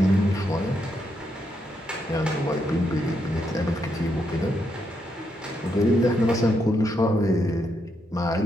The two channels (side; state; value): both; normal; correlation 0.79